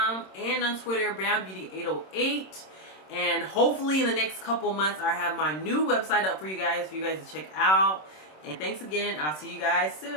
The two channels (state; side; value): late; right; 26 ms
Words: and on Twitter, BrownBeauty808. And hopefully in the next couple months, I have my new website up for you guys to check out. And thanks again. I'll see you guys